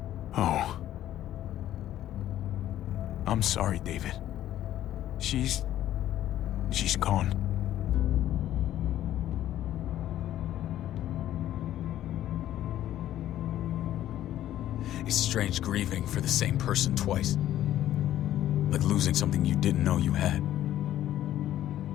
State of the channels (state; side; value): quieter; right; 12.5 dB